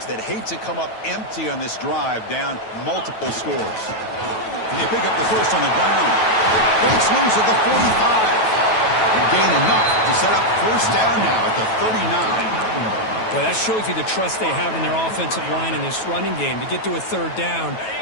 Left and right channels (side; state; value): right; late; 9.2 ms